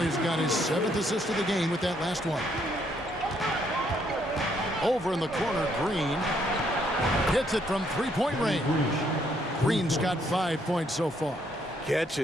got his 7th assist of the game with that last one. Over in the corner, Green hits it from 3-point range. Green's got 5 points so far. Catch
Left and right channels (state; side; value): normal; both; correlation 0.71